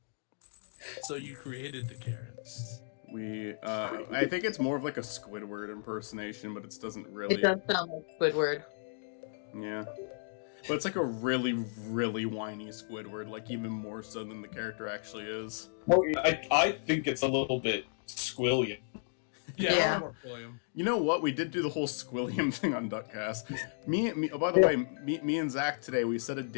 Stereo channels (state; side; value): silent; right; digital silence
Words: So you created the Karens. I think it's more of like a Squidward impersonation, but it doesn't really... It does sound like Squidward. Yeah. But it's like a really, really whiny Squidward, like even more so than the character actually is. Well, I think it's a little bit Squilliam. Yeah. You know what? We did do the whole Squilliam thing on Duckcast. By the way, me and Zach today, we set a